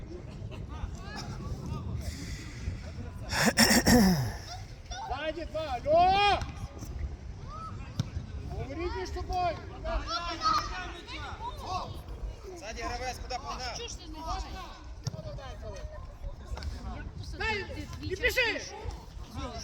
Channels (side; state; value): both; identical; correlation 1.00